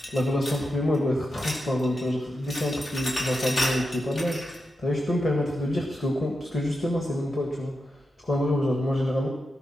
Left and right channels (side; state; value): both; normal; correlation 0.88